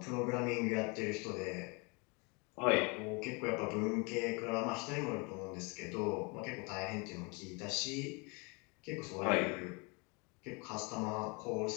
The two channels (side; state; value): right; quieter; 30.6 dB